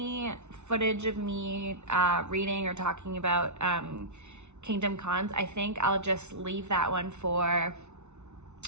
footage of me reading or talking about Kingdom Cons, I think I'll just leave that one for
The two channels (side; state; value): left; late; 0.82 ms